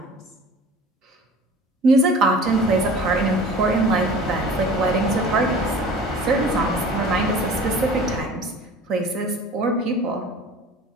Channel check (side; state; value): both; normal; correlation 0.43